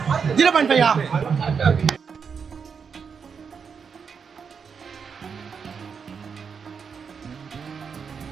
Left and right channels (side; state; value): left; quieter; 6.2 dB